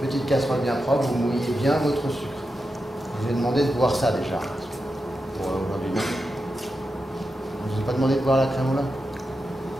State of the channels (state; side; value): normal; both; correlation 0.89